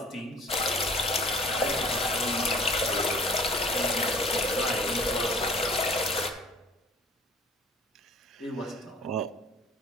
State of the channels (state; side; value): normal; both; correlation 0.49